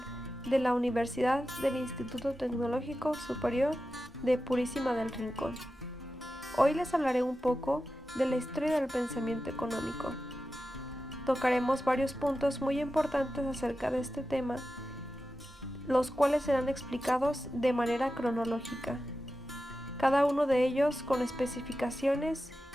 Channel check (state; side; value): normal; both; correlation 0.92